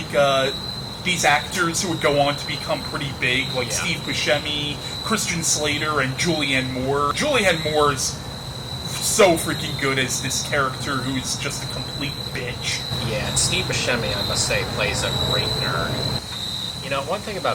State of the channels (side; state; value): both; identical; correlation 1.00